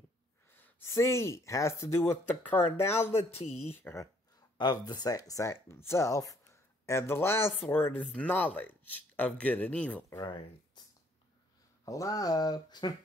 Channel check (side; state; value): both; normal; correlation 0.64